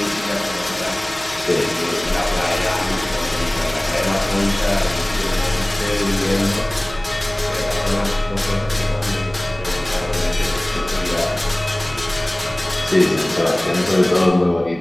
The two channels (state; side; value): noise; right; hum, 17 dB below the sound